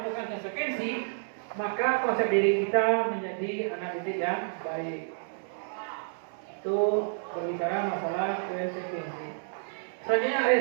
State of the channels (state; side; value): silent; left; digital silence